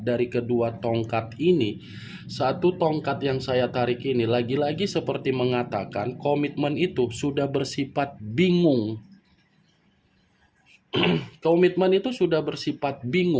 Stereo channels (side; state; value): both; identical; correlation 1.00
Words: kedua tongkat ini, satu tongkat yang saya tarik ini lagi-lagi seperti mengatakan komitmen itu sudah bersifat bingung. Komitmen itu sudah bersifat